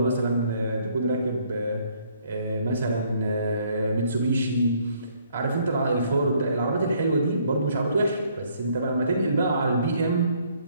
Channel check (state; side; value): inverted; both; correlation -0.66